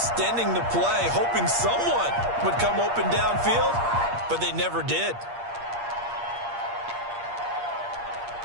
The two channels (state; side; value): late; left; 8.5 ms